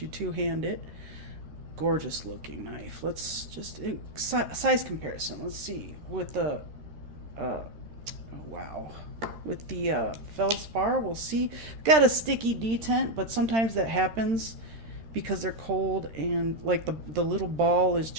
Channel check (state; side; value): late; left; 13 ms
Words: two-hand it. Gorgeous looking knife. Let's just size comparison. Let's see with the oh, wow, with the feldspar. We'll see. Got a sticky detent, but sometimes that happens because they're cold, and like the little ball is